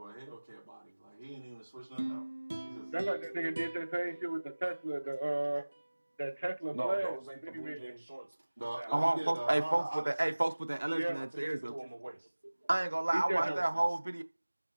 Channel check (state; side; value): inverted; both; correlation -1.00